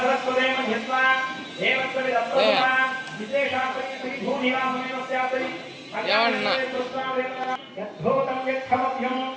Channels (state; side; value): identical; both; correlation 1.00